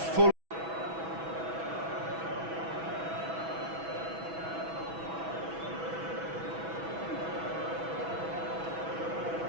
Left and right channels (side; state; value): left; late; 6.1 ms